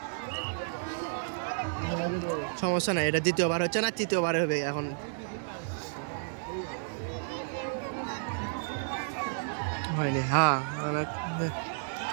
সমস্যা নাই এটা দ্বিতীয়বার হচ্ছে না তৃতীয়বার হবে এখন হয়নি হ্যাঁ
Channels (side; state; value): left; silent; digital silence